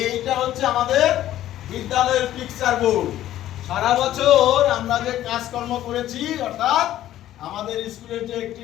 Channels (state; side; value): quieter; right; 13.1 dB